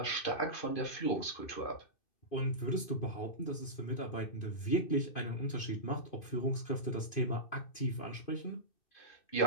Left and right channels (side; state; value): right; late; 2.5 ms